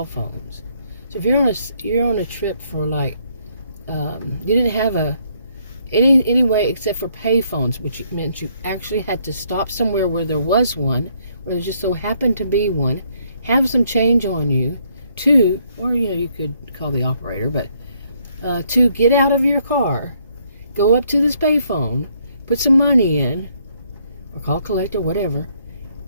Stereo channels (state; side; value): inverted; both; correlation -0.70